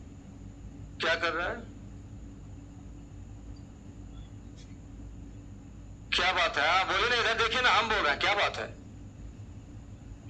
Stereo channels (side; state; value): both; identical; correlation 1.00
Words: क्या कर रहा है? क्या बात है? हाँ बोलिए ना, इधर देखिए ना, हम बोल रहे हैं, क्या बात है?